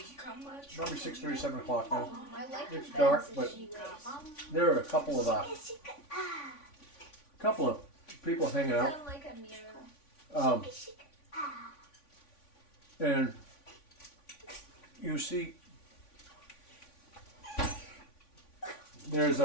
Come much. probably 6:30, 7 o'clock now. I like It's the dark, beds but that she wears. there are a couple of people hanging out. Sound like a mirror. And you see, there's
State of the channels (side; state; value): right; late; 3.5 ms